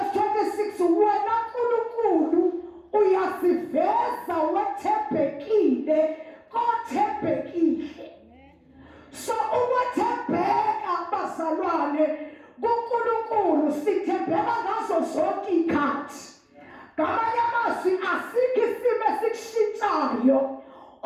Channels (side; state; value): both; identical; correlation 1.00